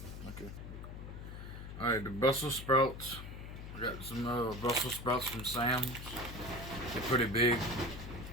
Okay. Alright, the Brussels sprouts. I got some Brussels sprouts from Sam's. They're pretty big.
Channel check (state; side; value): noise; left; hum, 10 dB below the sound